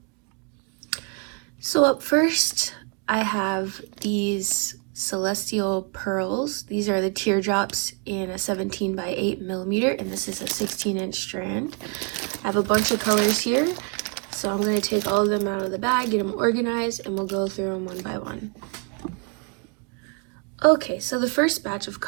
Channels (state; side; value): quieter; left; 35.1 dB